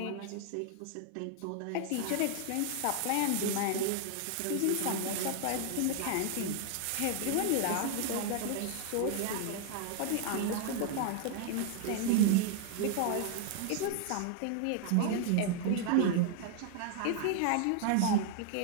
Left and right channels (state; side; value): different; both; correlation 0.00